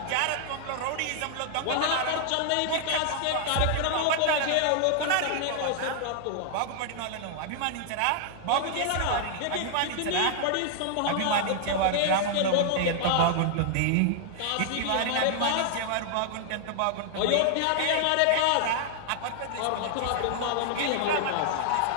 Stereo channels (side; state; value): both; different; correlation 0.00